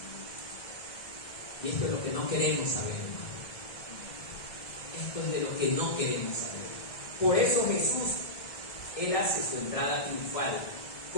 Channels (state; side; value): late; right; 1.7 ms